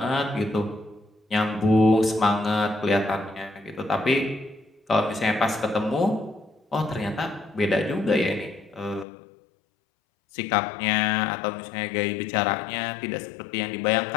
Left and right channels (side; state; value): right; drops out; at 9.1 s